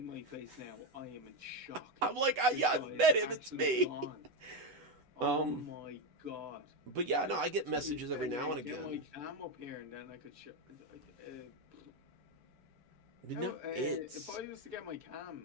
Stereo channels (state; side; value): late; left; 8.1 ms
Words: my face now, I am in shock. I'm like, yeah, I've met him. It's me. Gone. Oh my God. But yeah, no, I get messages every now and again. Get my cam up here and then I could show. No, it's. If I was to get my cam,